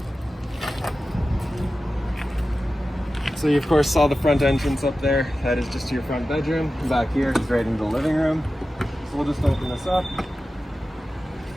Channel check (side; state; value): both; normal; correlation 0.94